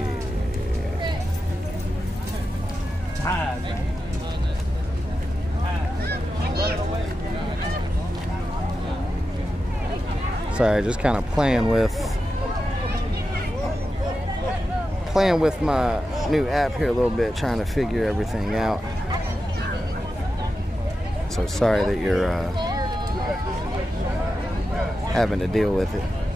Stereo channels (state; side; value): normal; both; correlation 0.90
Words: Sorry, just kind of playing with my new app here a little bit, trying to figure everything out. So sorry that you're having to deal with it.